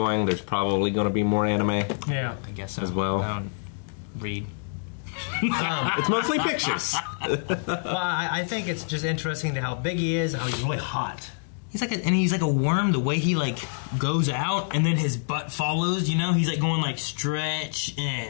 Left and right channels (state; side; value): silent; right; digital silence